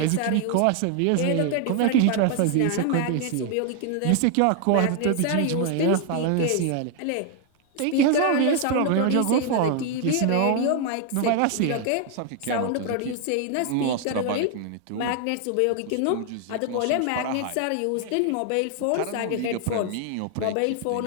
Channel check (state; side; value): different; both; correlation 0.00